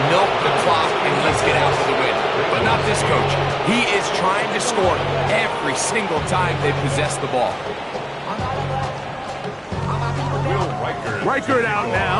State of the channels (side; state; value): both; identical; correlation 1.00